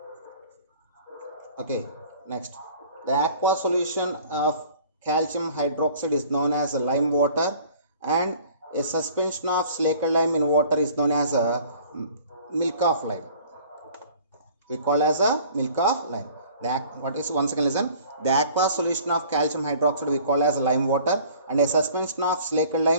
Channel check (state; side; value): inverted; both; correlation -0.50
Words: Okay, next, the aqueous solution of calcium hydroxide is known as lime water, and a suspension of slaked lime in water is known as a milk of lime. We call as a milk of lime. Once again listen, the aqueous solution of calcium hydroxide we call as lime water, and a suspension of slaked